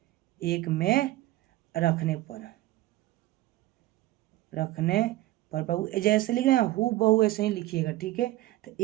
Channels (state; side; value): quieter; left; 16.6 dB